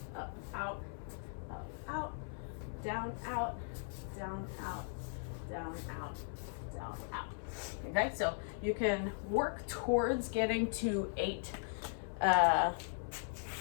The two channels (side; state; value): right; silent; 52 dB below the other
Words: up, out, up, out, down, out, down, out, down, out, down, out. Okay, so you can work towards getting to 8